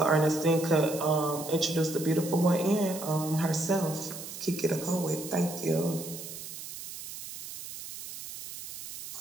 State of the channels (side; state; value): right; noise; hiss, 11 dB below the sound